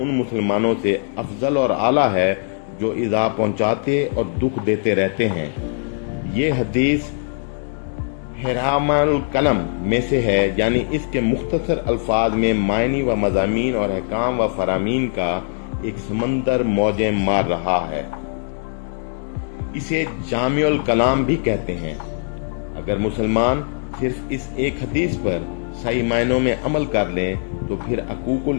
मुसलमानों से अफजल और आला है जो ईज़ा पहुँचाते और दुख देते रहते हैं। ये हदीस हिरामुल कलम में से है, यानी इसके मुख्तसर अल्फाज में मायनी व मज़ामीन और अहकाम व फरामीन का एक समंदर मौजें मार रहा है। इसे जामिउल कलाम भी कहते हैं। अगर मुसलमान सिर्फ इस एक हदीस पर सही मायनों में अमल कर लें तो फिर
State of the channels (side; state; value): right; silent; digital silence